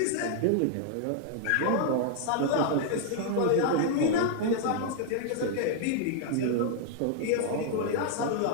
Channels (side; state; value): both; different; correlation 0.00